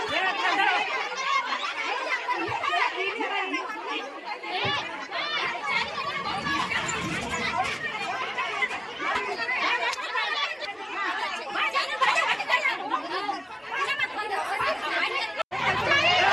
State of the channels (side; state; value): both; identical; correlation 1.00